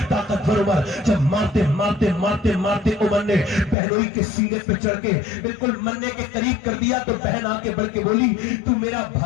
طاقتور عمر، جب مارتے عمر نے بہنوئی کے سینے پہ چڑھ کے بالکل مرنے کے قریب کر دیا تو بہن آ کے بڑھ کے بولی تو میرا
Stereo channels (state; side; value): drops out; right; at 3.8 s